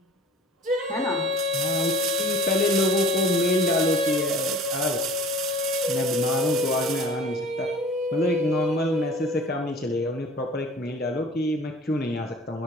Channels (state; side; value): normal; both; correlation 0.45